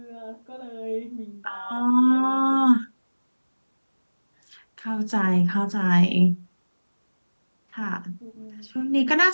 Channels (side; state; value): both; inverted; correlation -1.00